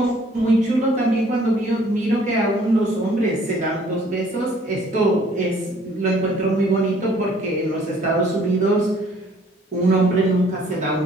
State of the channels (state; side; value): normal; both; correlation 0.58